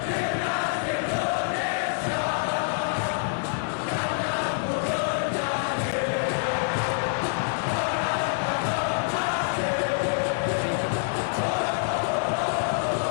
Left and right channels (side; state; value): right; silent; 61 dB below the other